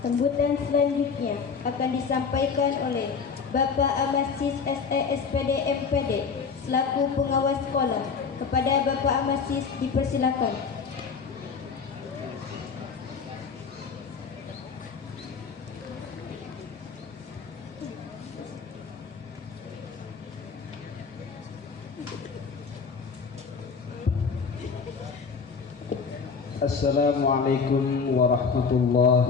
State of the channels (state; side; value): quieter; right; 5.6 dB